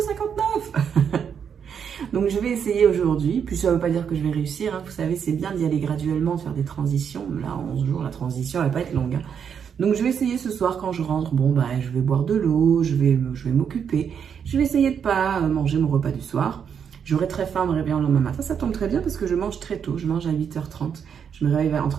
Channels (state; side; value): quieter; left; 7.5 dB